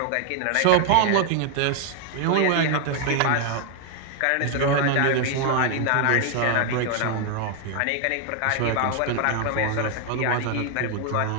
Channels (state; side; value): different; both; correlation 0.00